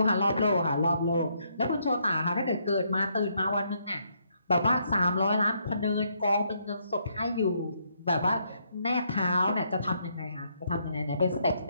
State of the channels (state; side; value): inverted; both; correlation -0.73